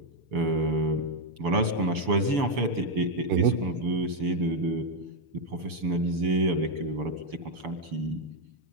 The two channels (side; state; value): left; late; 6.9 ms